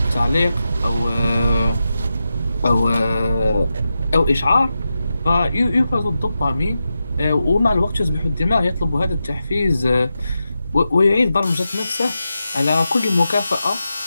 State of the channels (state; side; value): inverted; both; correlation -0.90